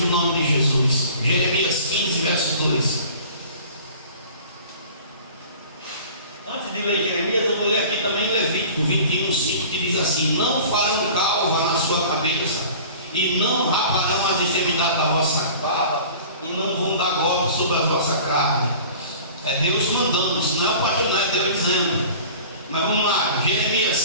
o nome de Jesus. Jeremias 15, verso 2. Antes de ler Jeremias, eu vou ler aqui também Levítico 21:5, que diz assim: não farão calva na sua cabeça, e não raparão as extremidades da vossa barba, e não vão dar golpe sobre a vossa carne. É Deus mandando, isso não é o pastor, não é Deus dizendo. Mas vamos lá,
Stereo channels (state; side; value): inverted; both; correlation -0.43